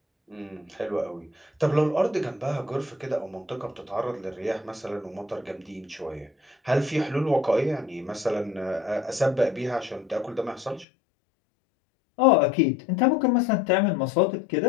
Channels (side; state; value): right; drops out; at 10.9 s